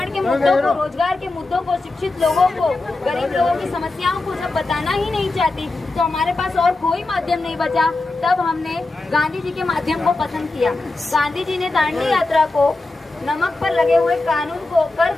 के मुद्दों को, रोजगार के मुद्दों को, शिक्षित लोगों को, गरीब लोगों की समस्याओं को जब बताना ही नहीं चाहती, तो हमारे पास और कोई माध्यम नहीं बचा। तब हमने गांधी जी के माध्यम को पसंद किया। गांधी जी ने दांडी यात्रा को नमक पर लगे हुए कानून को, कर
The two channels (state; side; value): quieter; right; 3.1 dB